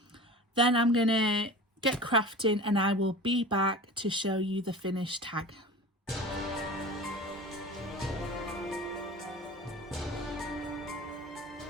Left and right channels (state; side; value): normal; both; correlation 0.36